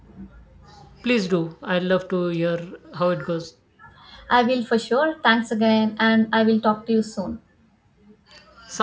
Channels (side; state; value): both; identical; correlation 1.00